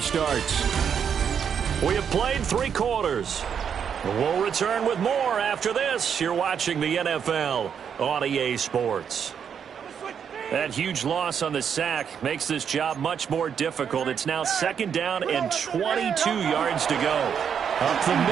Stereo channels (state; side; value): quieter; left; 7.6 dB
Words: starts. We have played 3 quarters. We'll return with more after this. You're watching the NFL on EA Sports. That huge loss on the sack makes this job much more difficult. It's now 2nd down and 22 yards to go. Up the